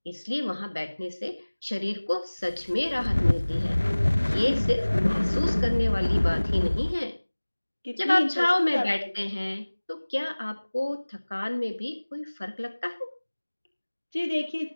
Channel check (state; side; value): inverted; both; correlation -1.00